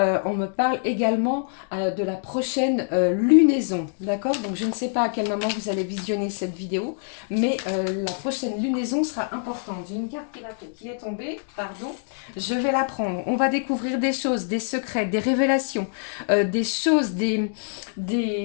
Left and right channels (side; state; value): right; silent; 62 dB below the other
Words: me parle également de la prochaine lunaison, d'accord? Donc, je ne sais pas à quel moment vous allez visionner cette vidéo, mais la prochaine lunaison sera importante. J'ai une carte qui est tombée, pardon, je vais la prendre. On va découvrir des choses, des secrets, des révélations, des choses, de